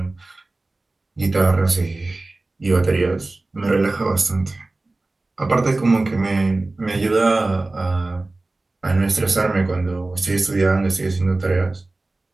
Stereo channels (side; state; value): left; quieter; 3.1 dB